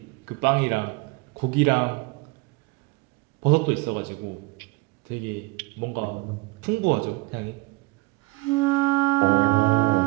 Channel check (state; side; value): quieter; left; 22.1 dB